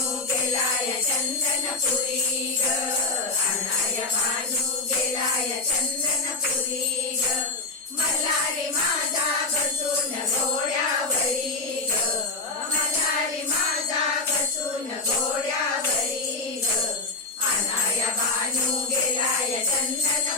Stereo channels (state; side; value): quieter; right; 3.4 dB